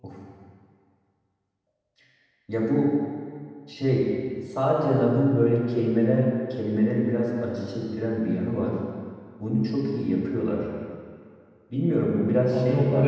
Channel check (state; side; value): identical; both; correlation 1.00